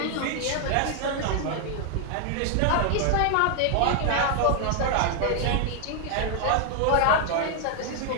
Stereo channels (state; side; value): different; both; correlation 0.00